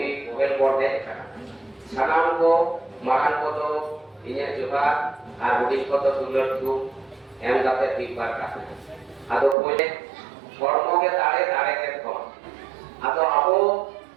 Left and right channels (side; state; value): left; drops out; at 9.6 s